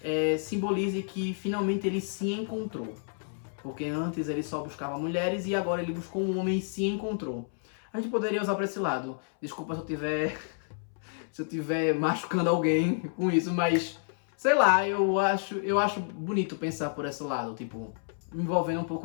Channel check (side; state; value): right; silent; 58 dB below the other